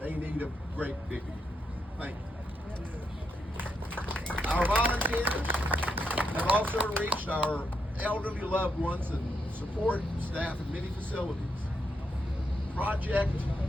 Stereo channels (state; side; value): normal; both; correlation 0.81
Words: need a great big thank you. Our volunteers have also reached our elderly loved ones and support staff in many facilities. Project